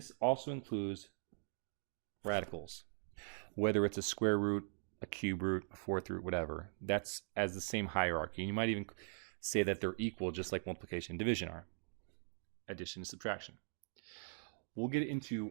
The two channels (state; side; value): silent; left; digital silence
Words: also includes radicals. Whether it's a square root, a cube root, a fourth root, whatever, that's as the same hierarchy. And you might even say that they're equal, just like multiplication and division are. Addition and subtraction. We'll get into